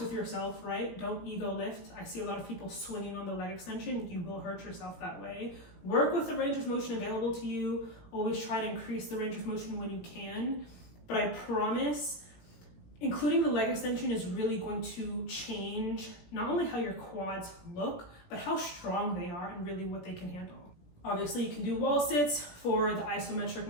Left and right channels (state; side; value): late; right; 17 ms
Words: yourself, right? Don't ego lift. I see a lot of people swinging on the leg extension. You will hurt yourself that way. Work with the range of motion available to you. Always try to increase the range of motion when you can. But I promise, including the leg extension is really going to change not only how your quads look, but how strong they are and really what they can handle. Obviously, you can do wall sits for the isometric